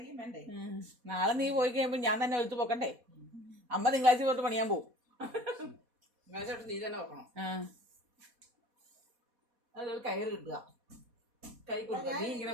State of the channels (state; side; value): late; left; 4.1 ms